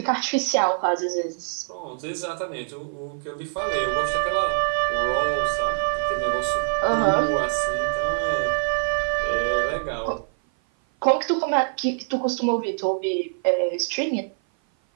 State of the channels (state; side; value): silent; left; 56 dB below the other